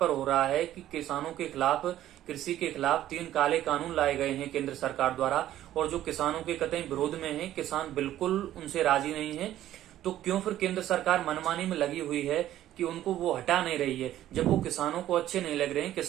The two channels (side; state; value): left; quieter; 12.9 dB